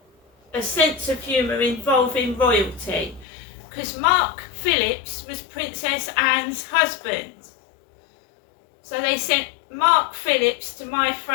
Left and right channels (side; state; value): right; drops out; at 3.2 s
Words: a sense of humour involving royalty. Because Mark Phillips was Princess Anne's husband. So they sent Mark Phillips to my